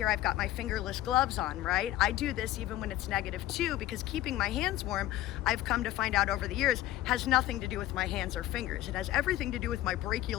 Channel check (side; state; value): right; quieter; 14.6 dB